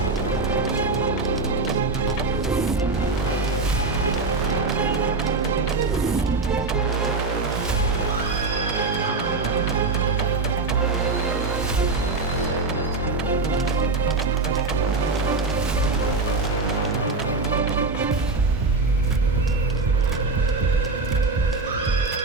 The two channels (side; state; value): left; quieter; 3.7 dB